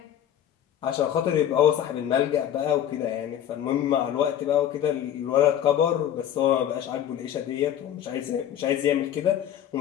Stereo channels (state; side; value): quieter; right; 10.5 dB